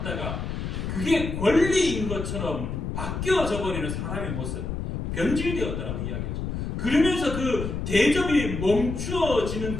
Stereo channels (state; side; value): noise; left; rumble, 4 dB below the sound